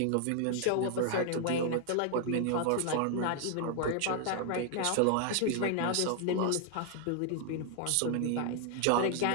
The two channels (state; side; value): different; both; correlation 0.00